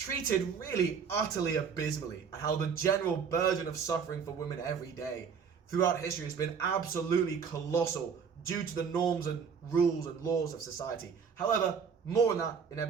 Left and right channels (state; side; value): quieter; left; 6.4 dB